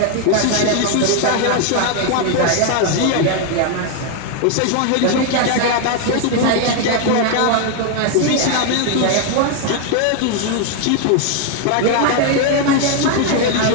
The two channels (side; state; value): both; different; correlation 0.01